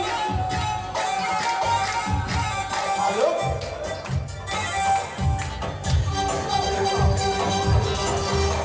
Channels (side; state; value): both; identical; correlation 1.00